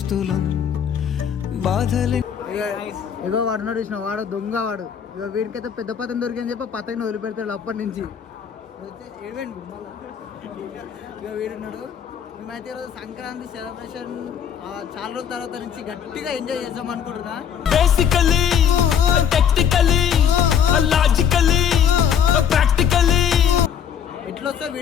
బాధలే. ఇగో వాడు చూసిన వాడు దొంగ వాడు. ఇక వీడికైతే పెద్ద పతంగి దొరికిందని చెప్పి పతంగిని వదిలిపెడతాడు అప్పటి నుంచి. ఇక వీడున్నాడు. మేమైతే ఈరోజు సంక్రాంతి సెలబ్రేషన్ చాలా రోజుల తర్వాత నుంచి గట్టిగా ఎంజాయ్ చేద్దాం అనుకుంటున్నా. బేసికల్లీ టెక్నికల్లీ లాజికల్లీ ప్రాక్టికల్లీ ఎట్లా వస్తే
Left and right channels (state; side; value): quieter; right; 8.2 dB